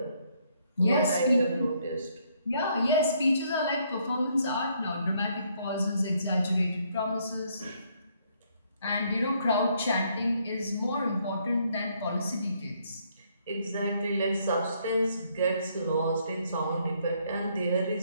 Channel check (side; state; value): both; inverted; correlation -0.69